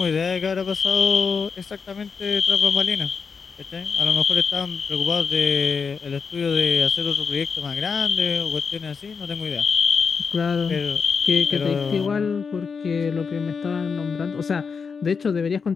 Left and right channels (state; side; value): quieter; right; 5.6 dB